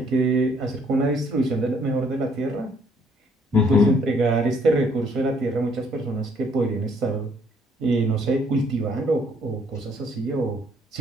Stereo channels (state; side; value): normal; both; correlation 0.65